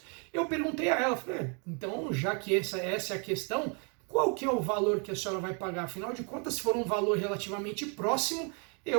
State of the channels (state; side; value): quieter; left; 36.4 dB